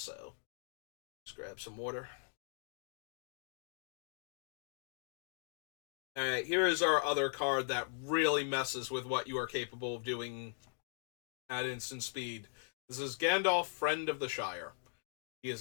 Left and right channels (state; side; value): silent; right; digital silence